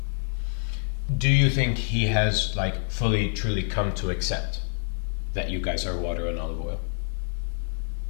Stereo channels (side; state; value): right; silent; digital silence